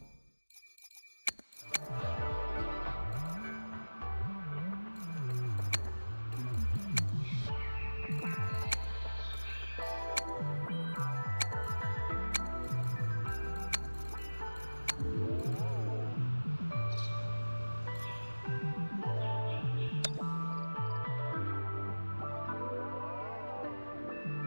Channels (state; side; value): inverted; both; correlation -1.00